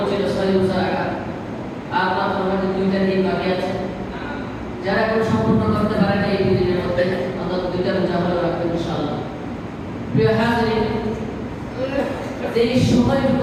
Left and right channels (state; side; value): identical; both; correlation 1.00